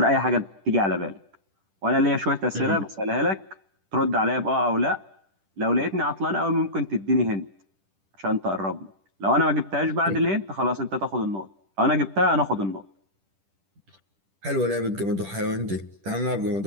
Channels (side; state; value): left; late; 10 ms